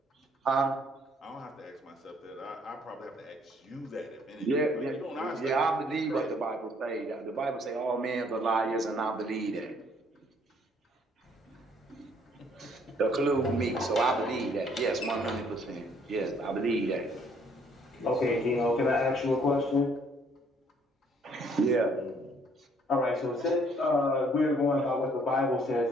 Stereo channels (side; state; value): both; normal; correlation 0.63